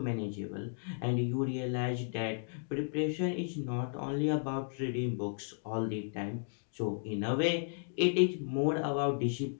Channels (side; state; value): right; silent; digital silence